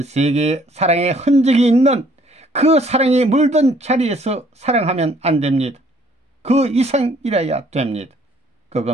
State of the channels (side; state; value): both; normal; correlation 0.62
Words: 세계의 사랑의 흔적이 있는 그 사랑이 물든 자리에서 사랑하면 안 됩니다. 그 이상이라야 됩니다.